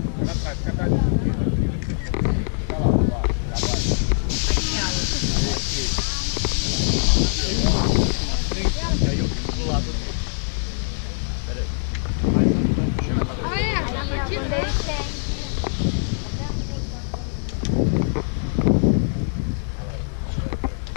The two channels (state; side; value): silent; right; digital silence